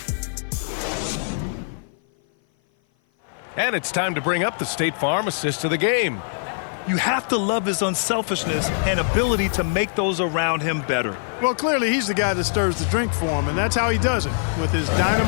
And it's time to bring up the State Farm assist of the game. You have to love his unselfishness and ability to make those around him better. Well, clearly he's the guy that stirs the drink for him, and that's how he does it, with his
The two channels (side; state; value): right; silent; 56 dB below the other